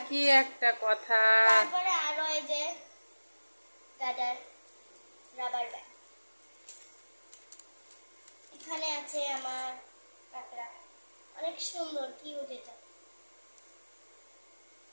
কি একটা কথা। তারপরে আরো এই যে গার্ডার, রাবার ব্যান্ড। এখানে আছে আমার কাঁকড়া, অনেক সুন্দর, কিউট এটা।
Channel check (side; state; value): both; inverted; correlation -1.00